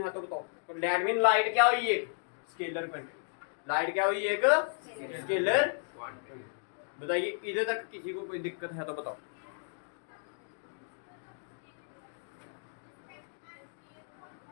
है तो बताओ। तो दैट मीन लाइट क्या हुई? एक स्केलर क्वांटिटी। लाइट क्या हुई? एक स्केलर क्वांटिटी। बताइए, इधर तक किसी को कोई दिक्कत है तो बताओ।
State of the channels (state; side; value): silent; right; digital silence